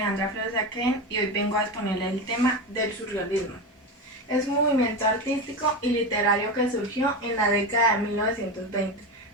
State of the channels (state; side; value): normal; both; correlation 0.20